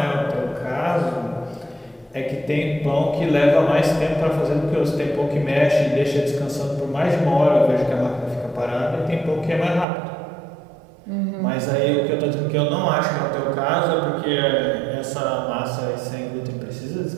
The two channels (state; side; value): drops out; left; at 9.9 s